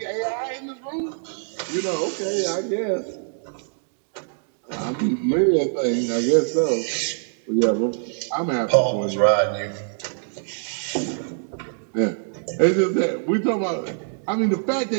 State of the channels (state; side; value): silent; left; digital silence